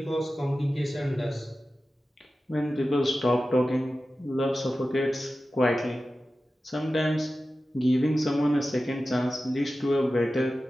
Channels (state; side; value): normal; both; correlation 0.94